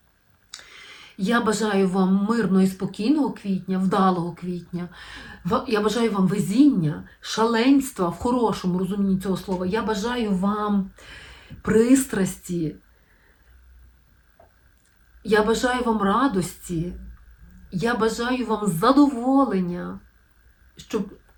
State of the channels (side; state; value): both; identical; correlation 1.00